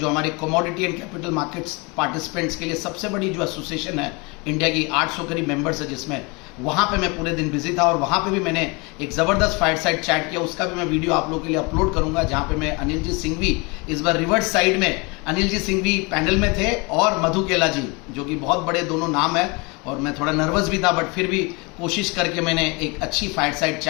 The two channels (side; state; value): right; quieter; 28.3 dB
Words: हमारे commodity and capital markets participants के लिए सबसे बड़ी जो एसोसिएशन है इंडिया की, 800 करीब मेंबर्स है जिसमें, वहाँ पे मैं पूरे दिन बिजी था। और वहाँ पे भी मैंने एक ज़बरदस्त फाइट साइड चैट किया, उसका भी मैं वीडियो आप लोगों के लिए अपलोड करूँगा, जहाँ पे मैं अनिल जी सिंघवी, इस बार रिवर्स साइड में अनिल जी सिंघवी पैनल में थे और मधु केला जी, जो कि बहुत बड़े दोनों नाम है। और मैं थोड़ा नर्वस भी था, बट फिर भी कोशिश करके मैंने एक अच्छी फाइट साइड